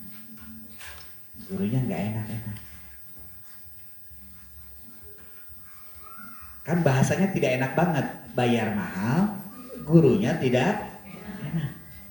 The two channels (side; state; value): right; noise; hiss, 29 dB below the sound